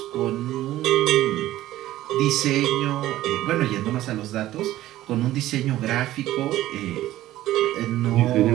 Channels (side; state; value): left; quieter; 14.8 dB